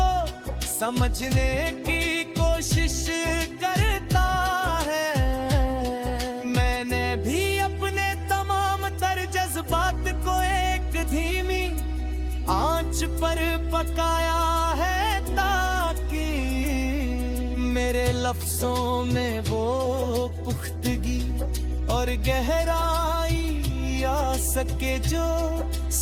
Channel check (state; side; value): identical; both; correlation 1.00